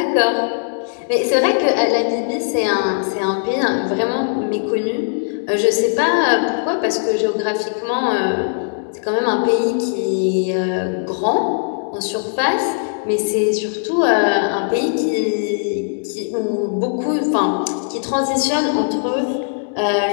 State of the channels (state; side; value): silent; right; digital silence